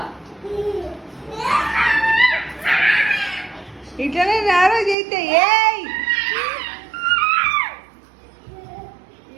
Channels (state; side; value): drops out; left; at 5.0 s